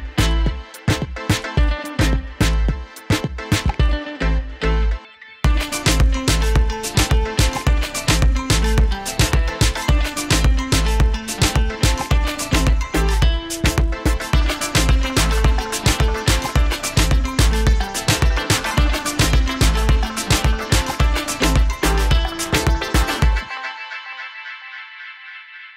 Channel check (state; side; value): identical; both; correlation 1.00